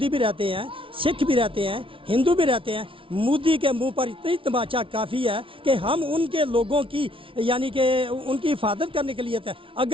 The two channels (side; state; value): left; late; 0.25 ms